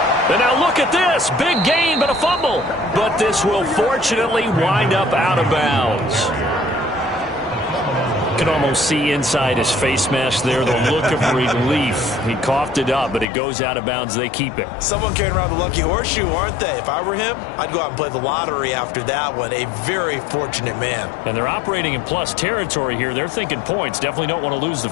And now look at this. Big gain, but a fumble. But this will fortunately wind up out of bounds. You can almost see inside his face mask there the look of relief. He coughed it up, but it goes out of bounds. They keep it. Someone carrying around the lucky horseshoe, aren't they? If I were him, I'd go out and play the lottery after that one. A very fortunate man. And they're operating in plus territory here. They're thinking points. Definitely don't want to lose the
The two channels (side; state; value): right; drops out; at 13.2 s